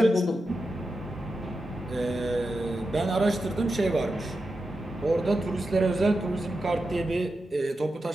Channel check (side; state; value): both; normal; correlation 0.90